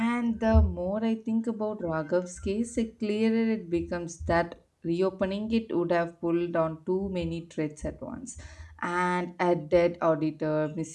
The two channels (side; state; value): both; identical; correlation 1.00